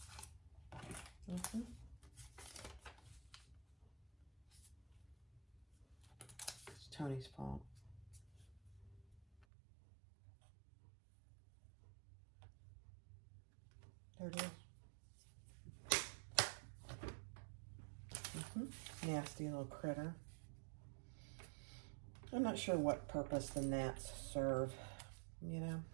It's Tony's fault. There it is. Nasty little critter. I'm not sure what purpose the gnats serve, you know.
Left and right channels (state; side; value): drops out; left; at 9.5 s